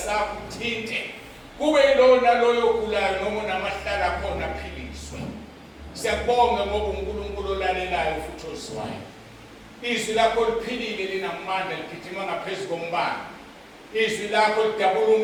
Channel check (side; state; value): both; identical; correlation 1.00